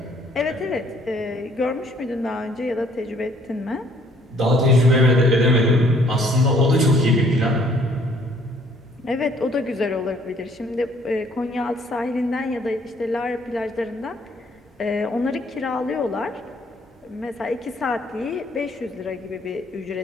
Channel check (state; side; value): normal; both; correlation 0.62